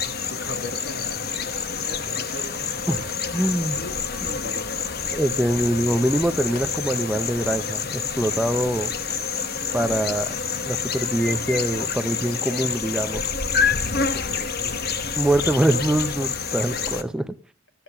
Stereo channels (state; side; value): normal; both; correlation 0.63